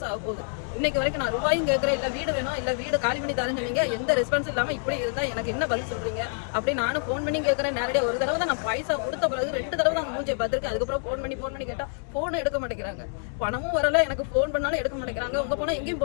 ஆக போகுது. இன்னைக்கு வரைக்கும் நான் ரூபாயும் கேட்குறேன், இல்லை வீடு வேணும், இல்லை வீடு காலி பண்ணி தரேன்னு சொன்னீங்க, எந்த ரெஸ்பான்ஸ் இல்லாமல் இப்படி இருந்தால் எனக்கு என்ன பதில் சொல்றீங்க அப்படி நானும் ஃபோன் பண்ணி கேட்குறேன். நேரடியாக ஒரு தடவை தான் நான் பைசா கொடுத்த பிறகு 2 தடவை தான் மூஞ்சியை பார்த்துருக்கேன். அதுக்கப்புறம் ஃபோன் பண்ணி கேட்டால் ஃபோனை எடுக்க மாட்டேங்கிறாங்க, பணமும் வரல, எனக்கு ஃபோன் பண்ணாலும் எடுக்க மாட்டேங்கிறாங்க. உங்க போனால் எங்கேயும்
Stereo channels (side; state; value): right; silent; digital silence